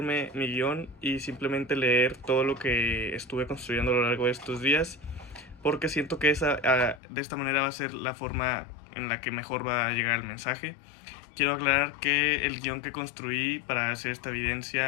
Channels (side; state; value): right; drops out; at 7.0 s